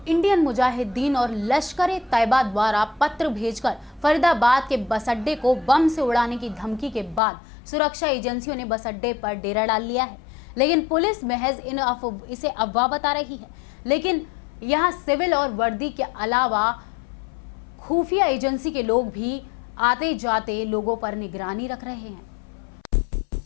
इंडियन मुजाहिदीन और लश्कर-ए-तैयबा द्वारा पत्र भेजकर फरीदाबाद के बस अड्डे को बम से उड़ाने की धमकी के बाद सुरक्षा एजेंसियों ने बस अड्डे पर डेरा डाल लिया है। लेकिन पुलिस महज इसे अफवाह बता रही है। लेकिन यहाँ सिविल और वर्दी के अलावा खुफिया एजेंसी के लोग भी आते जाते लोगों पर निगरानी रख रहे हैं।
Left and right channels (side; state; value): right; drops out; at 7.2 s